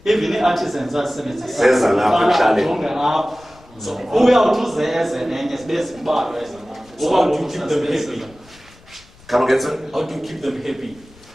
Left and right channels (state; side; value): noise; left; rumble, 26 dB below the sound